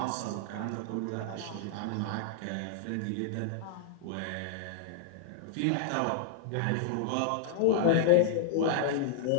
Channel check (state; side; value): different; both; correlation -0.01